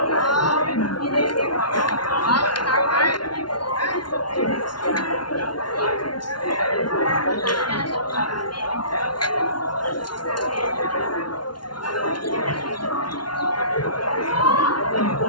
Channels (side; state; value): right; late; 0.71 ms